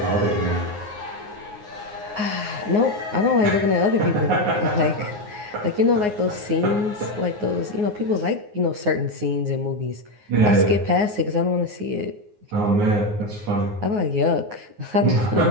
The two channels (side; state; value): left; late; 9.6 ms